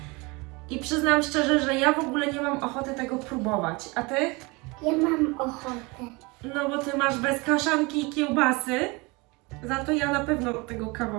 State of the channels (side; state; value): left; quieter; 26.2 dB